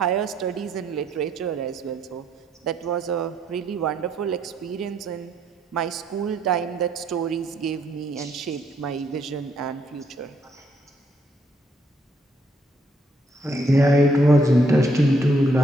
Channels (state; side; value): normal; both; correlation 0.72